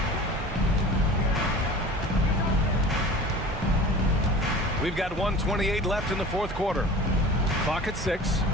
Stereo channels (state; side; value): normal; both; correlation 0.40